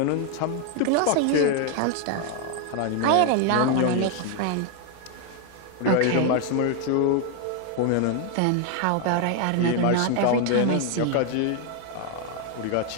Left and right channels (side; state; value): both; different; correlation 0.01